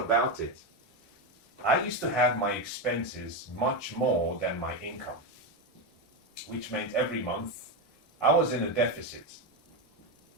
it. I used to have my expenses much more than my income, which meant every month I was in a deficit.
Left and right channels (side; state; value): both; normal; correlation 0.12